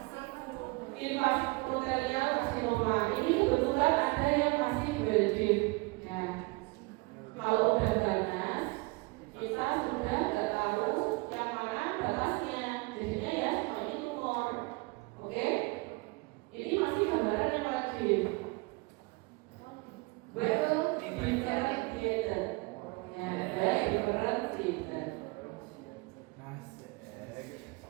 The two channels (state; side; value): quieter; left; 26.5 dB